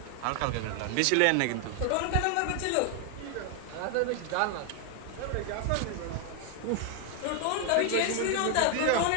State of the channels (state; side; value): different; both; correlation 0.00